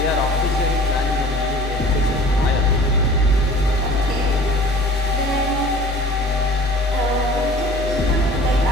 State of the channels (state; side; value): normal; both; correlation 0.44